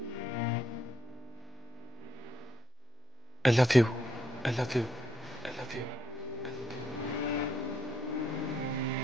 I love you. I love you. I love you.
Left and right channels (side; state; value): both; normal; correlation 0.74